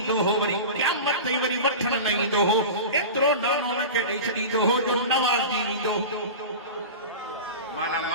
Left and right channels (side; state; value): both; inverted; correlation -0.30